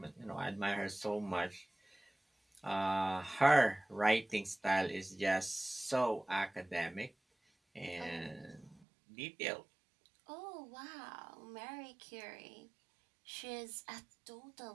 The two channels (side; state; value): left; drops out; at 8.8 s